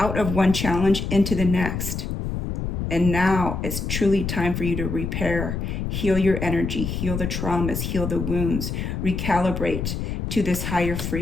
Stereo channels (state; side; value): noise; left; rumble, 3 dB below the sound